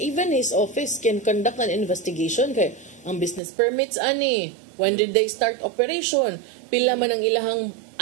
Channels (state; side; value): drops out; left; at 3.4 s